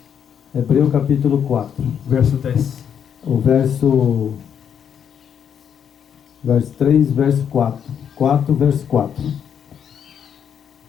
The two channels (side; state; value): right; quieter; 8.2 dB